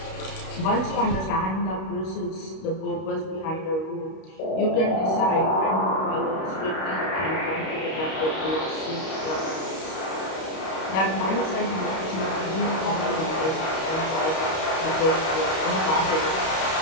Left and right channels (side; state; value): right; late; 31 ms